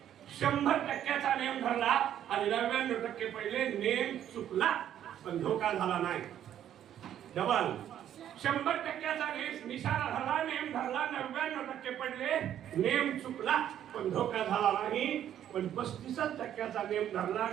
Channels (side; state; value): left; quieter; 10.6 dB